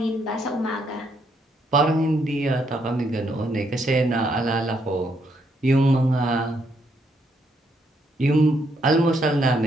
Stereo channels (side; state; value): both; normal; correlation 0.74